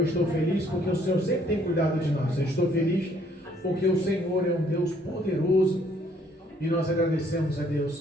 estou feliz porque o Senhor sempre tem cuidado de nós. Eu estou feliz porque o Senhor é um Deus poderoso e nós agradecemos a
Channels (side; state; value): both; normal; correlation 0.64